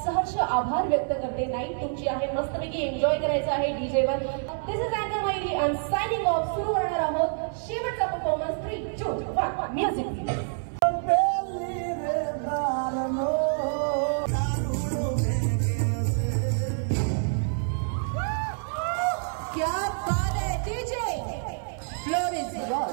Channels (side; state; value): left; silent; 60 dB below the other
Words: सहर्ष आभार व्यक्त करते. नाईट तुमची आहे. मस्तपैकी एन्जॉय करायचं आहे डीजेवर. दिस इज अँकर मायली आणि सायनिंग ऑफ. सुरू करणार आहोत शेवटचा परफॉर्मन्स. 3, 2, 1 म्युझिक. क्या बात है डीजे.